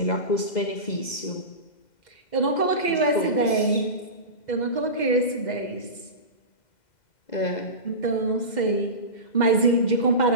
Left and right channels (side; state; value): right; late; 2.0 ms